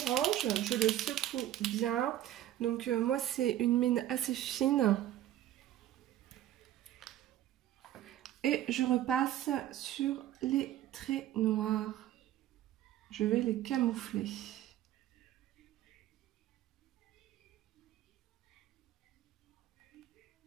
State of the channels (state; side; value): quieter; left; 12.9 dB